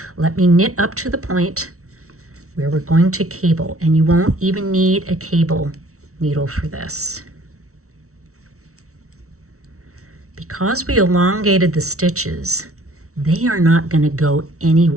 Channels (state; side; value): late; left; 0.64 ms